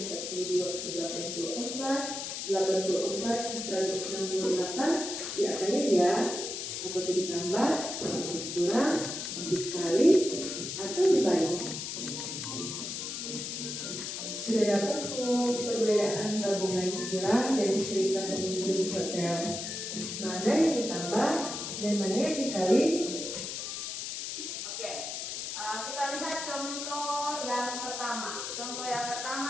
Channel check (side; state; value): left; noise; hiss, 5 dB below the sound